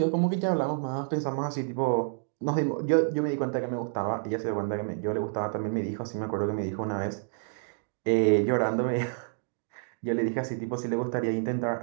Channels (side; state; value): left; silent; digital silence